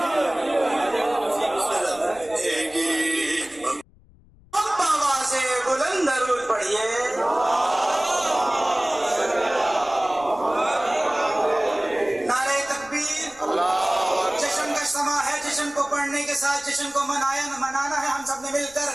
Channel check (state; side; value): noise; left; rumble, 27 dB below the sound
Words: گی۔ اب آواز بلند درود پڑھیے۔ نعرہ تکبیر، جشن کا سما ہے، جشن کو پڑھنے کے ساتھ جشن کو منانا ہے ہم سب نے مل کر،